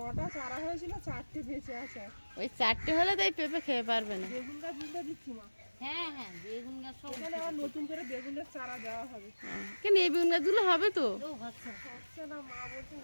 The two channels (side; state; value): both; inverted; correlation -1.00